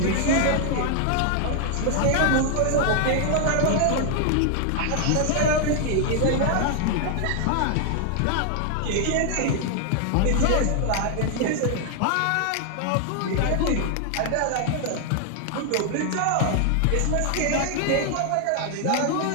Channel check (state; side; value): different; both; correlation 0.00